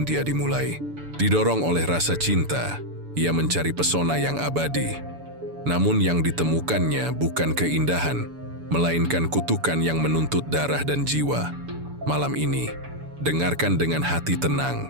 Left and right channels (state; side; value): late; left; 7.0 ms